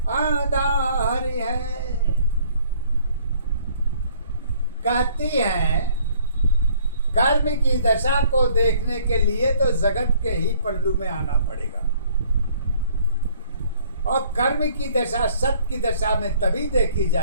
आधार है। कहती है कर्म की दशा को देखने के लिए तो जगत के ही पल्लू में आना पड़ेगा, और कर्म की दशा सत्य की दशा में तभी देखी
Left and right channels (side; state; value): both; inverted; correlation -0.59